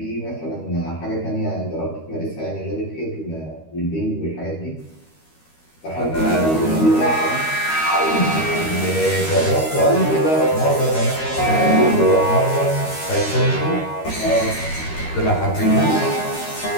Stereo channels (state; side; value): late; right; 13 ms